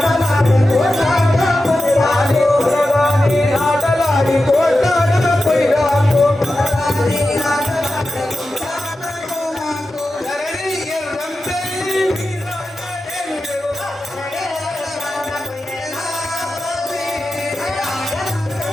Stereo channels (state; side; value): normal; both; correlation 0.92